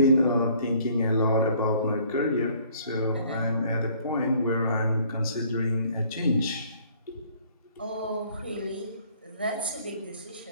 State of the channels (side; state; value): both; inverted; correlation -0.58